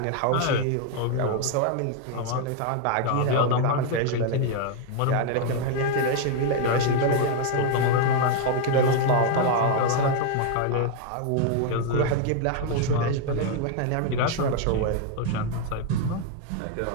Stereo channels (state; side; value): different; both; correlation 0.01